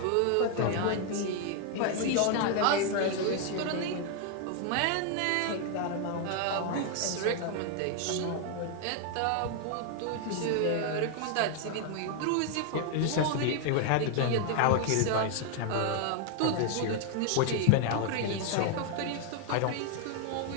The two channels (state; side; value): different; both; correlation 0.00